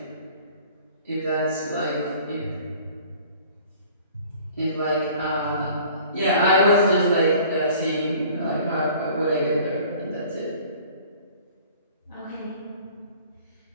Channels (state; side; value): inverted; both; correlation -0.50